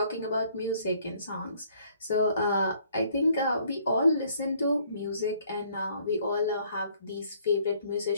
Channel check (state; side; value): inverted; both; correlation -0.62